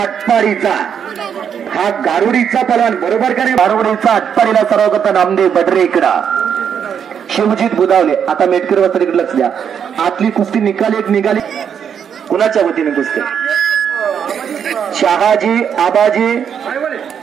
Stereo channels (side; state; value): left; quieter; 7.9 dB